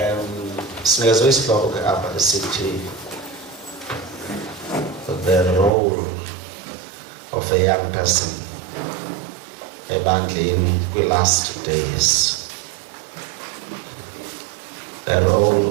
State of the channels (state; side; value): drops out; left; at 5.7 s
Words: Sinikezwe isihloko apha esithi the role of a young person ebandleni kwi-last days. The